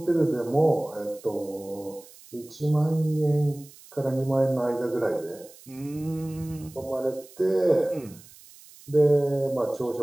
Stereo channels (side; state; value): right; noise; hiss, 22 dB below the sound